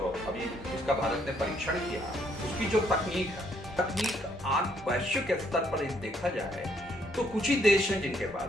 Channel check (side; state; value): both; normal; correlation 0.69